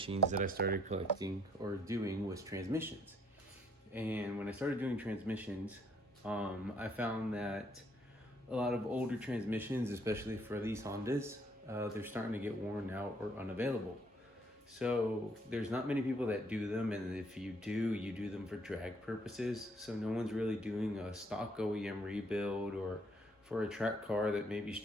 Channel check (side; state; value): both; normal; correlation 0.67